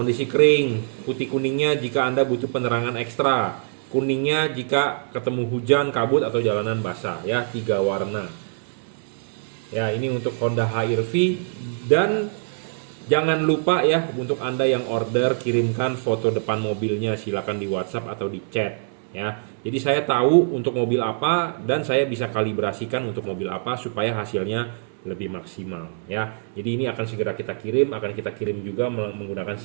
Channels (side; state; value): left; silent; 63 dB below the other